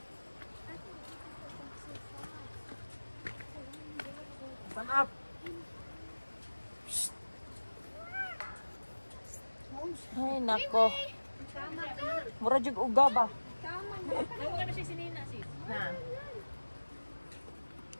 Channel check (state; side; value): inverted; both; correlation -1.00